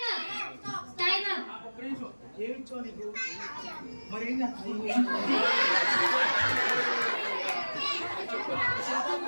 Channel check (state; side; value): inverted; both; correlation -1.00